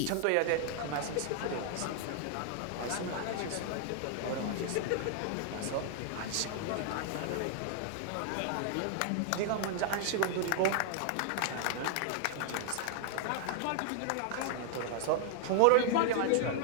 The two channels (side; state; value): both; different; correlation -0.01